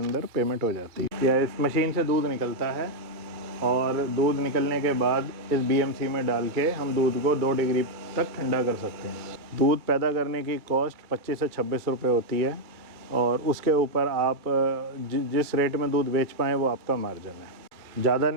पेमेंट हो जाती है। या इस मशीन से दूध निकलता है, और दूध निकलने के बाद इस बीएमसी में डाल के हम दूध को 2 डिग्री तक ठंडा कर सकते हैं। दूध पैदा करने की कॉस्ट 25 से 26 रुपये होती है, और उसके ऊपर आप जिस रेट में दूध बेच पाएँ वो आपका मार्जिन है। ज़्यादा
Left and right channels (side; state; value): left; late; 2.2 ms